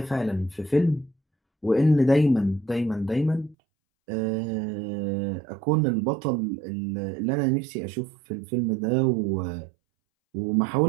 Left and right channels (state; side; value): drops out; left; at 3.6 s